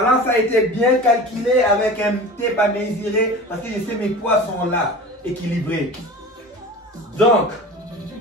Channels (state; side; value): normal; both; correlation 0.35